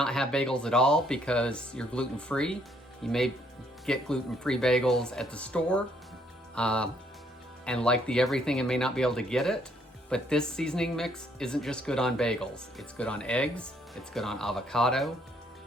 have bagels at all because you're gluten-free. You may get gluten-free bagels at the store, and like the Everything and may not be able to get it. But this seasoning mix isn't just good on bagels. It's good on eggs, it's good on avocado,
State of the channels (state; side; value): normal; both; correlation 0.68